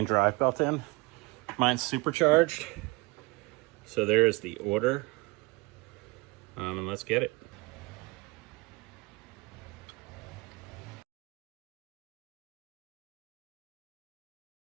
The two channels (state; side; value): quieter; left; 24.3 dB